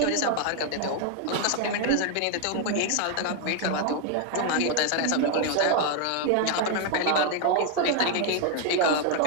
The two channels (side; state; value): both; different; correlation 0.01